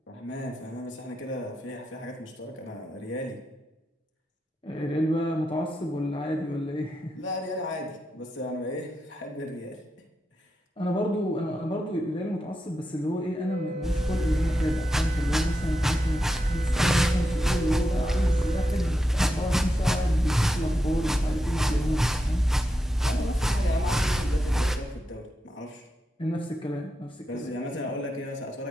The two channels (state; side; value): normal; both; correlation 0.87